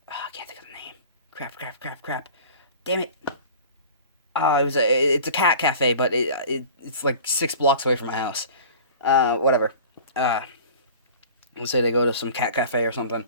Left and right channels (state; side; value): inverted; both; correlation -0.40